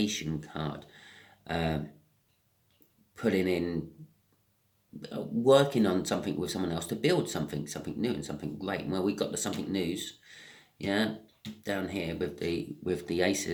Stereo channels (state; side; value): identical; both; correlation 1.00